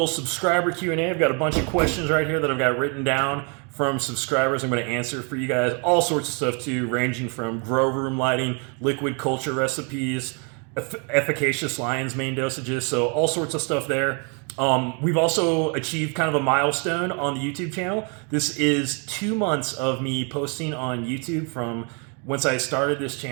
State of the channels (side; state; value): left; quieter; 36.5 dB